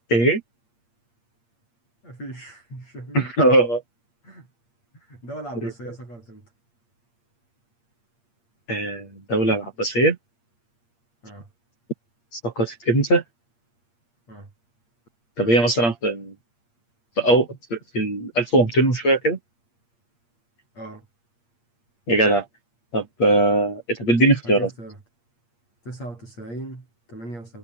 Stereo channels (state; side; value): late; right; 8.6 ms